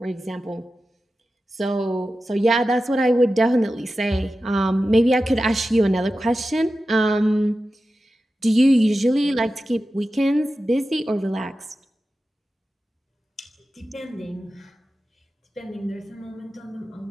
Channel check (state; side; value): normal; both; correlation 0.93